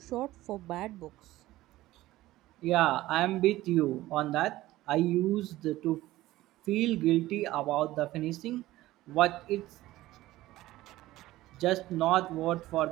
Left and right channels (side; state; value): left; quieter; 16.5 dB